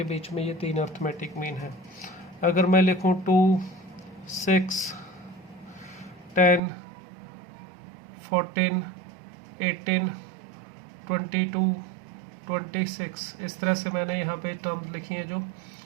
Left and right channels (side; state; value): left; drops out; at 6.6 s